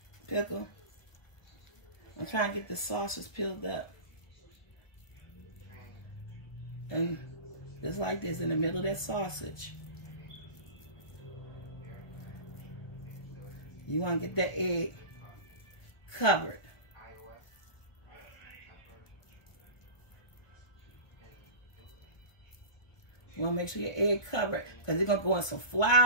Pickle. I'm trying to get the sausage peeled up. And just like this, in the middle of that sausage. You want to get that egg covered. You want to make sure your egg covered, because you're going to go in some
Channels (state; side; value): late; right; 1.1 ms